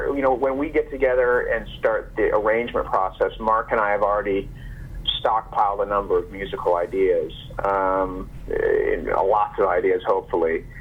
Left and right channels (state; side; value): identical; both; correlation 1.00